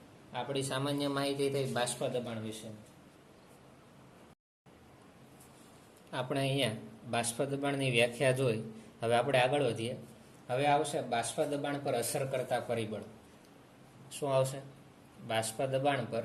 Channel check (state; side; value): identical; both; correlation 1.00